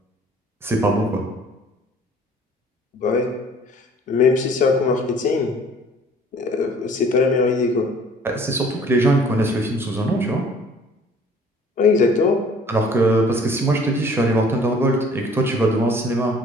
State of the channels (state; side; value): normal; both; correlation 0.53